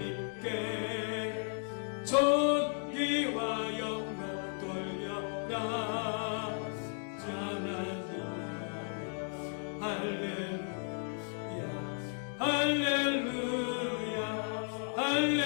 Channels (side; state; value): right; silent; 55 dB below the other